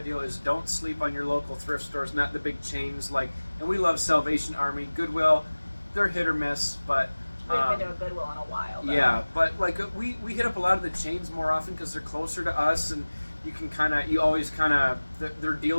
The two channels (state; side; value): inverted; both; correlation -1.00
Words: is don't sleep on your local thrift stores, not the big chains. And we love Salvation Army, Goodwill. They're hit or miss, but we haven't been to a Goodwill in a while. Though. Yeah, but we hit up a lot of the chains more often because they're closer to us, and you always their